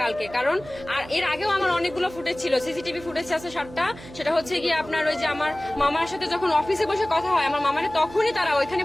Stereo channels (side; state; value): right; noise; hum, 17 dB below the sound